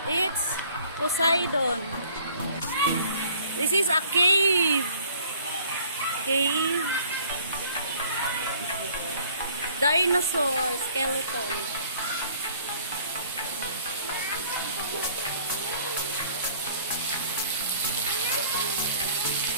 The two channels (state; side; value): inverted; both; correlation -0.55